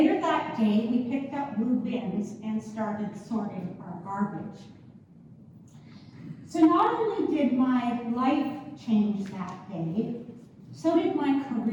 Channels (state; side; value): identical; both; correlation 1.00